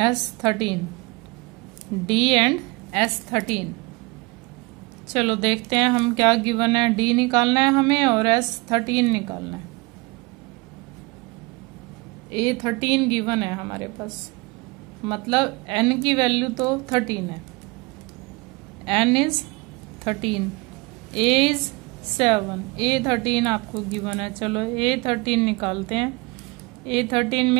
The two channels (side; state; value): left; quieter; 25.9 dB